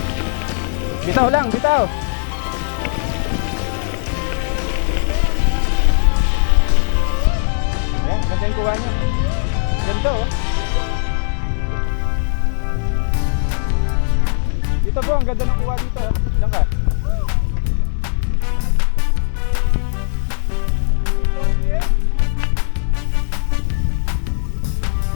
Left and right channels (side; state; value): right; silent; digital silence